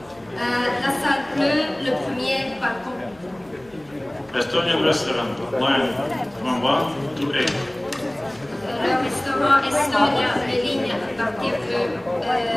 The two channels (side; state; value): left; noise; hum, 28 dB below the sound